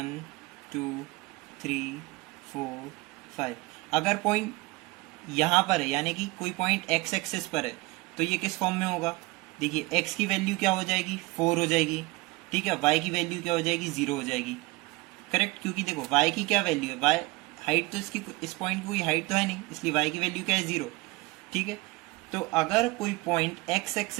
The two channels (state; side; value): quieter; left; 23.0 dB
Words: 2 3 4 5, अगर पॉइंट यहाँ पर है, यानी कि कोई पॉइंट एक्स एक्सिस पर है, तो ये किस फॉर्म में होगा? देखिए, एक्स की वैल्यू क्या हो जाएगी? 4 हो जाएगी, ठीक है। वाई की वैल्यू क्या हो जाएगी? 0 हो जाएगी, करेक्ट। क्योंकि देखो वाई की क्या वैल्यू है, वाई हाइट तो इसकी, इस पॉइंट की कोई हाइट तो है नहीं, इसलिए वाई की वैल्यू क्या है? 0, ठीक है। तो अगर कोई पॉइंट एक्स